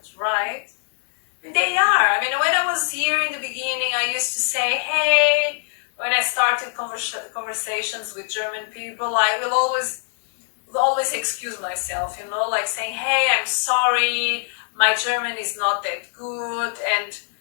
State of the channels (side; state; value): right; silent; digital silence